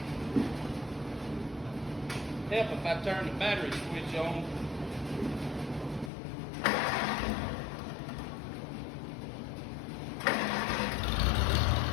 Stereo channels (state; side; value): drops out; right; at 6.1 s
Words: Help if I turn the battery switch on.